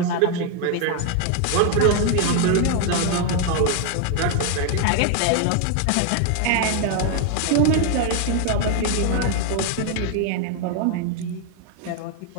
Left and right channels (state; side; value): different; both; correlation 0.00